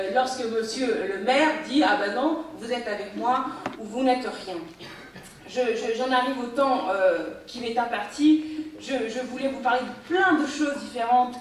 lorsque monsieur le maire dit « Ah ben non, vous êtes avec moi ou vous n'êtes rien ». J'en arrive au temps qui m'est imparti. Je voulais vous parler de plein de choses différentes,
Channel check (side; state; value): both; identical; correlation 1.00